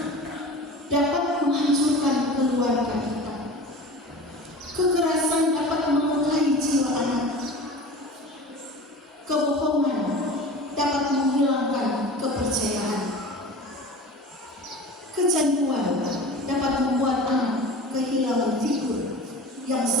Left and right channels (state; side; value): normal; both; correlation 0.36